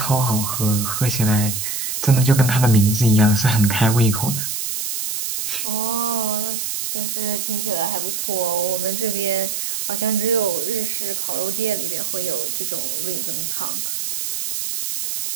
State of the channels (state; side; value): noise; right; hiss, 3 dB below the sound